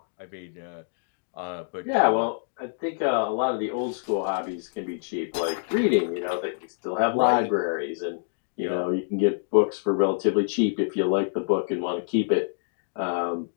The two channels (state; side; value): silent; right; digital silence